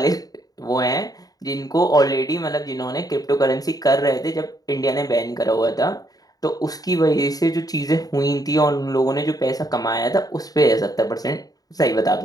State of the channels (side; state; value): right; late; 0.18 ms